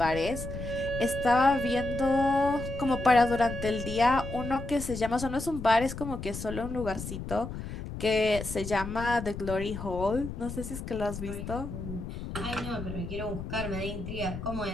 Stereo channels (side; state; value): left; noise; rumble, 8 dB below the sound